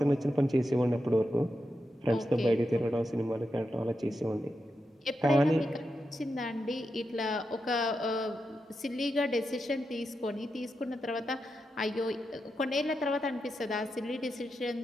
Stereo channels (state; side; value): normal; both; correlation 0.87